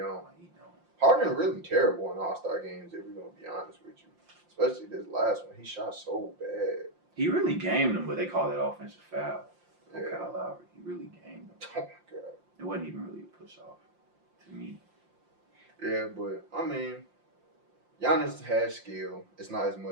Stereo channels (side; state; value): left; late; 5.7 ms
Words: Like, he don't. Harden really terrible in All-Star games, if we're going to be honest with you. Especially this last one. He shot so bad. He really gamed them, but they call that offensive foul. Yeah. Kyle Lowry. He really gamed them. Oh, my God. It wasn't even really a push-off to me. Yeah, but, I mean, Giannis has skill. It's not as